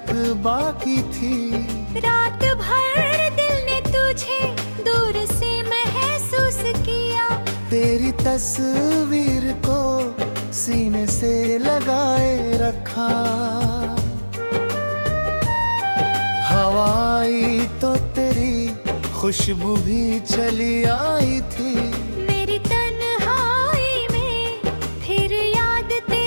बाकी थी। रात भर दिल ने तुझे दूर से महसूस किया, तेरी तस्वीर को सीने से लगाए रखा। हवा आई तो तेरी खुशबू भी चली आई थी। मेरी तन्हाई में फिर याद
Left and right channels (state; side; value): inverted; both; correlation -1.00